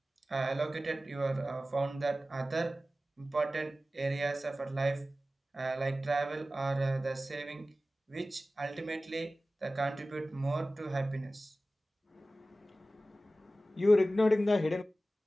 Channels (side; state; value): both; normal; correlation 0.96